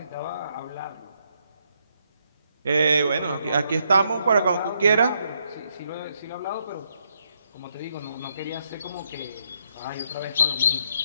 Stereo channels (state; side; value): inverted; both; correlation -0.76